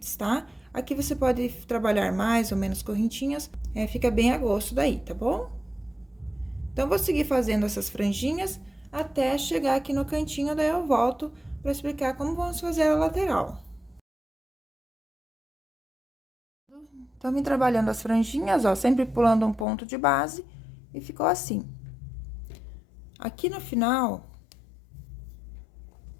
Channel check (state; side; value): drops out; right; at 19.7 s